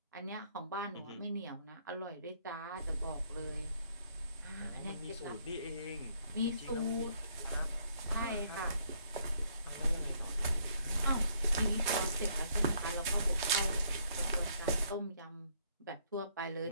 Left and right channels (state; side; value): inverted; both; correlation -0.67